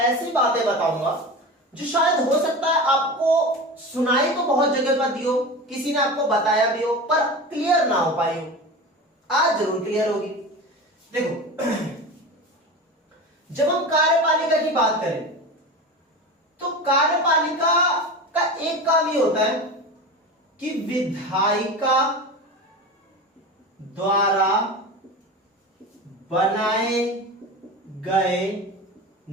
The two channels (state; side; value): normal; both; correlation 0.29